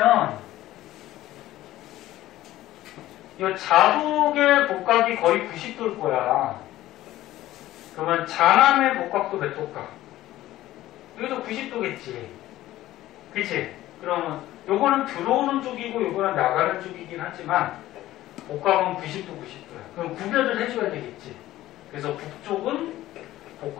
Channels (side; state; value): right; quieter; 15.1 dB